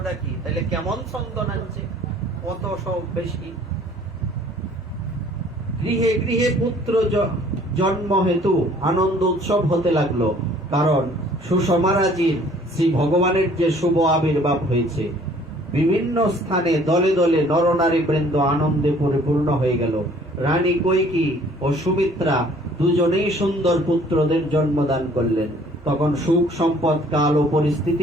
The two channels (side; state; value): both; normal; correlation 0.56